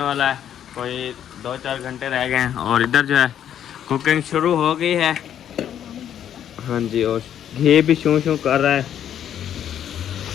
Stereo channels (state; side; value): quieter; right; 10.0 dB